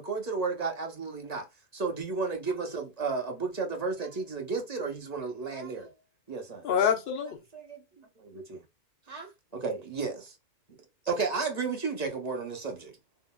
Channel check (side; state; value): right; late; 1.9 ms